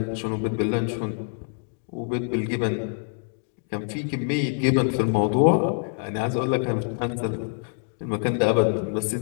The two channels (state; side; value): silent; right; 61 dB below the other